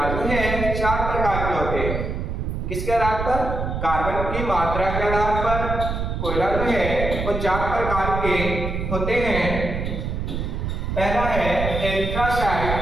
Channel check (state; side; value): noise; right; rumble, 3 dB below the sound